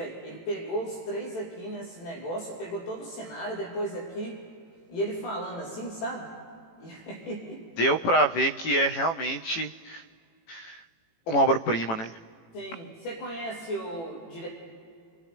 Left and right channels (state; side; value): late; right; 18 ms